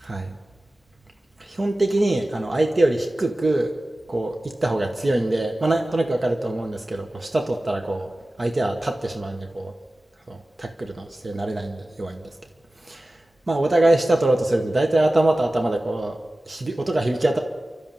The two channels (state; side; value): normal; both; correlation 0.96